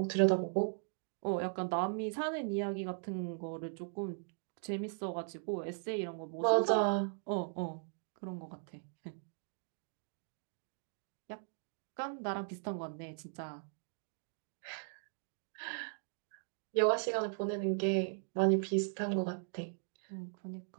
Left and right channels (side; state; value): left; silent; digital silence